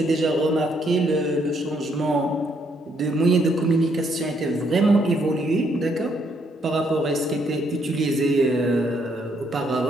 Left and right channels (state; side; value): normal; both; correlation 0.72